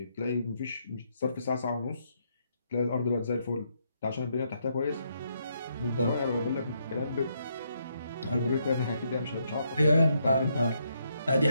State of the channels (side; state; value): both; inverted; correlation -0.77